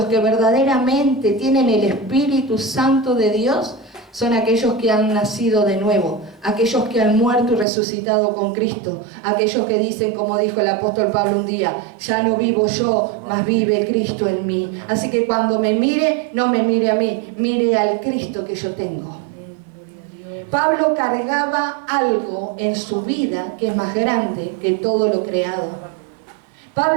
que verdaderamente tienen el Espíritu Santo de Dios, son aquellos que han nacido de nuevo, aquellos que han muerto y resucitado con Cristo, aquellos que dicen, como dijo el apóstol Pablo un día: ya no vivo yo, mas vive Cristo en mí. Así que cuando me mire, no me mire a mí, mire al Cristo que yo tengo. Pablo cargaba algo en su vida que es más grande que todo lo creado.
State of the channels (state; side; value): drops out; left; at 7.7 s